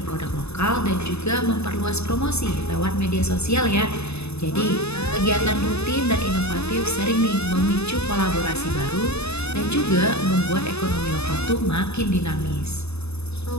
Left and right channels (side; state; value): right; late; 0.80 ms